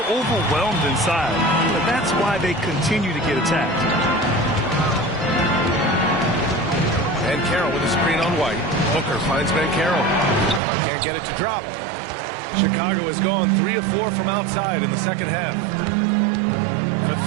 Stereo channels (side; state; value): left; drops out; at 10.6 s